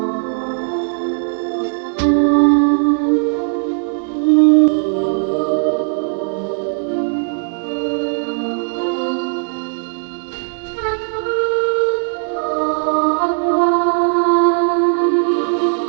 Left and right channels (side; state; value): left; silent; 59 dB below the other